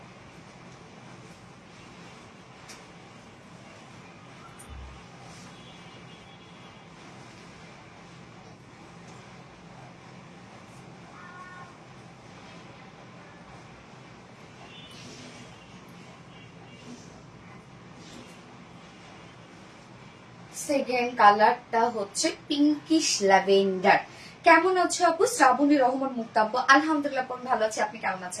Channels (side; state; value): both; identical; correlation 1.00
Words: সেকেন্ড কালারটা হচ্ছে পিঙ্কিশ ল্যাভেন্ডার। কেমন আছো আপু? শ্রাবণী রহমান মুক্তা আপু, আলহামদুলিল্লাহ ভালো আছি। আপনি কেমন